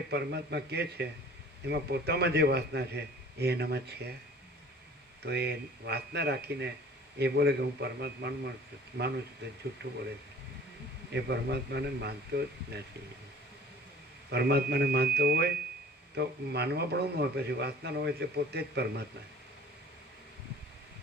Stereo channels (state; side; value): normal; both; correlation 0.48